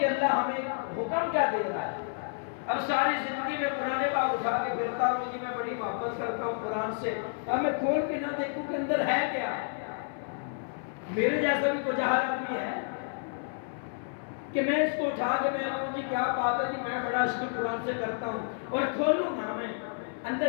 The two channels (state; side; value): silent; right; 56 dB below the other